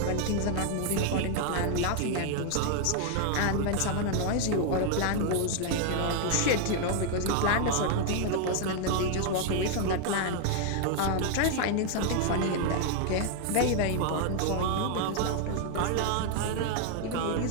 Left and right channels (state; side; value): different; both; correlation 0.00